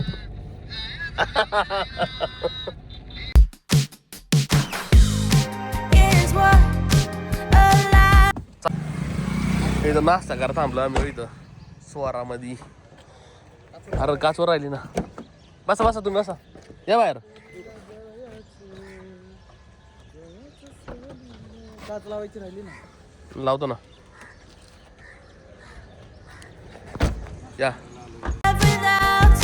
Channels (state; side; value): identical; both; correlation 1.00